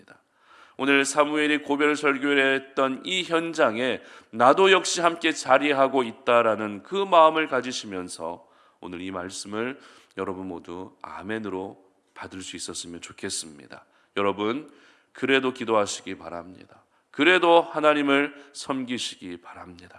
오늘 사무엘이 고별 설교를 했던 이 현장에 나도 역시 함께 자리하고 있다라는 그 마음을 가지시면서 오늘 이 말씀을 여러분 모두 아멘으로 받을 수 있었으면 좋겠습니다. 여러분 그래도 기도하시기 바랍니다. 그래도 하나님을 섬기시기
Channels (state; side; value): identical; both; correlation 1.00